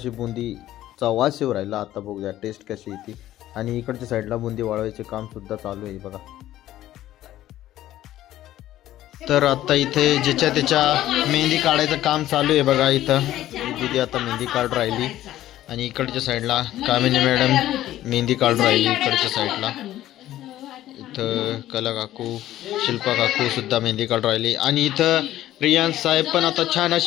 बुंदीचा वास येऊ राहिला. आता बघूया टेस्ट कशी येते. आणि इकडच्या साईडला बुंदी वाळवायचे काम सुद्धा चालू आहे बघा. तर आता इथे ज्याच्या त्याच्या मेहंदी काढायचं काम चालू आहे बघा. इथं दीदी आता मेहंदी काढून राहिली आणि इकडच्या साईडला कामिनी मॅडम मेहंदी काढून राहिली. इकडच्या साईडला इथं कला काकू, शिल्पा काकू सुद्धा मेहंदी काढून राहिली. आणि इथं रियान्स साहेब पण आता छान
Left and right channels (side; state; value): right; quieter; 13.7 dB